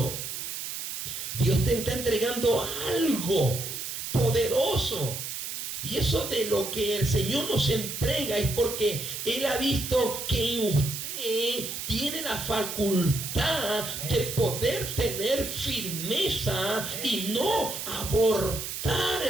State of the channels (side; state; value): right; noise; hiss, 6 dB below the sound